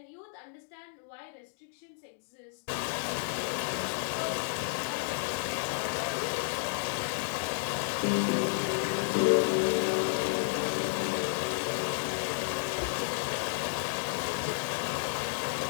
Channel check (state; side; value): silent; right; digital silence